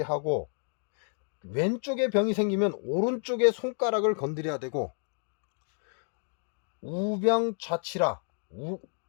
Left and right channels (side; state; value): right; silent; 58 dB below the other